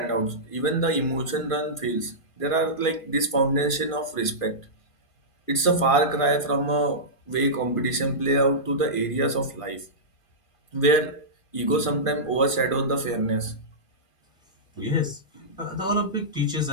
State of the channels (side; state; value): right; late; 2.4 ms